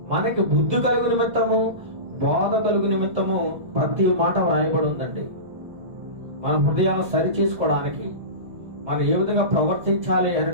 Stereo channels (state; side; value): late; left; 1.6 ms